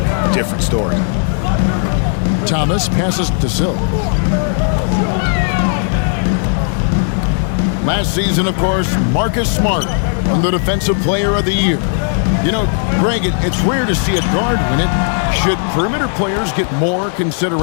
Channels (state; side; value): silent; right; 60 dB below the other